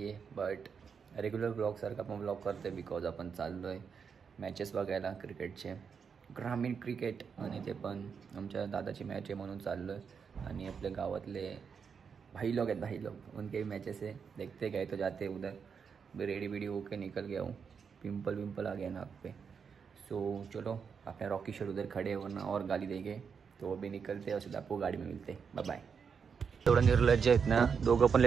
आहे, but regular ब्लॉगसारखा आपण ब्लॉग करतो आहे बिकॉज आपण चाललो आहे मॅचेस बघायला क्रिकेटचे, ग्रामीण क्रिकेट. आणि ते पण आमच्या दादाची मॅच आहे म्हणून चाललो आहे. आणि आपल्या गावातले भाई लोग आहेत, भाई लोग उनके भी मैचेस है, देखते गए तो जाते उधर रेडी वेडी होके निकल गया हूँ. पिंपल विंपल आ गया नाक पे. सो चलो, अपने रॉकी शर्ट उधर खड़े वरना और गाली देंगे, तो वो भी निकलते हैं और सीधा आपको गाड़ी में मिलते. Bye bye. एवढं निर्लज्ज आहेत ना दोघं, पण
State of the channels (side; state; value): left; quieter; 6.3 dB